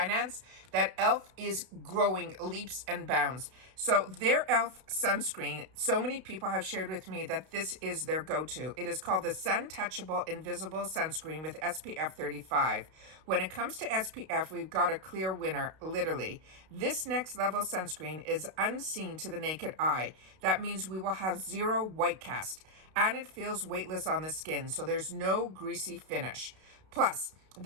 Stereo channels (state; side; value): late; left; 32 ms